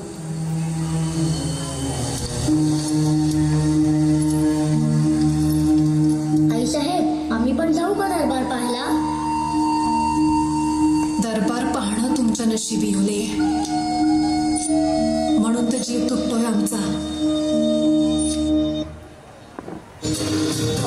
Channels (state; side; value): identical; both; correlation 1.00